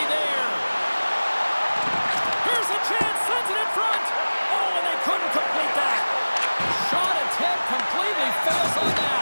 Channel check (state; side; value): inverted; both; correlation -1.00